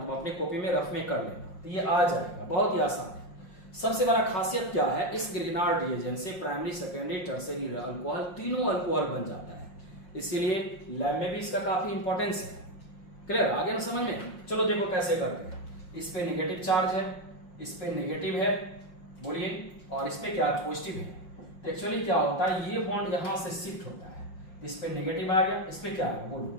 अपने कॉपी में रफ में कर लेना, तो ये आ जाएगा। बहुत ही आसान है। सबसे बड़ा खासियत क्या है, इस ग्रिग्नार्ड रिएजेंट से प्राइमरी, सेकेंडरी, टर्शियरी अल्कोहल, तीनों अल्कोहल बन जाता है। इसीलिए लैब में भी इसका काफी इंपॉर्टेंस है। क्लियर? आगे ना समझ में? चलो देखो कैसे करते हैं। इस पे नेगेटिव चार्ज है, इस पे नेगेटिव है बोलिए, और इस पे क्या पॉजिटिव है। तो एक्चुअली क्या होता है, ये बॉन्ड यहां से शिफ्ट होता है, इस पे नेगेटिव आ गया, इस पे क्या आएगा बोलो?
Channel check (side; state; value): right; late; 5.6 ms